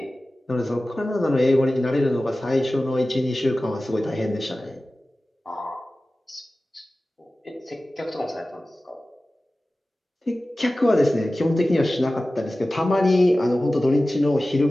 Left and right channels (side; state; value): both; normal; correlation 0.96